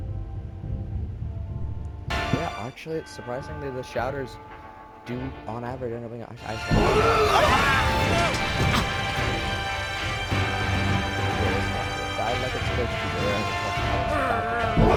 Yeah, actually, it's surprisingly the shouters do, on average, end up being. Died like it's supposed to be there.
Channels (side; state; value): both; identical; correlation 1.00